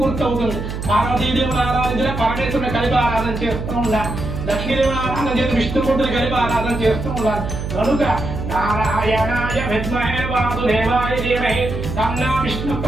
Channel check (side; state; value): right; noise; hum, 5 dB below the sound